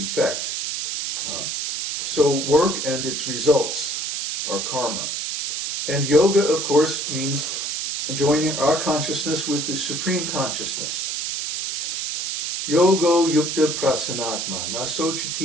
So work and its results are karma. And yoga, of course, means joining our consciousness with the Supreme Consciousness. Yogo yukta prasanatma, na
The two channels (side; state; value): right; noise; hiss, 2 dB below the sound